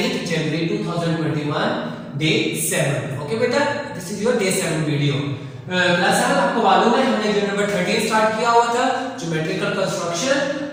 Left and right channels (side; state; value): both; identical; correlation 1.00